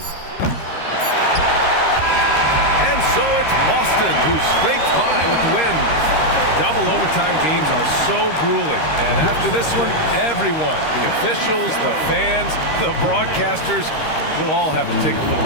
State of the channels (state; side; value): late; right; 13 ms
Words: And so it's Boston who scrapes by with the win. Double overtime games are so grueling. And after this one, everyone, the officials, the fans, the broadcasters, will all have to take a little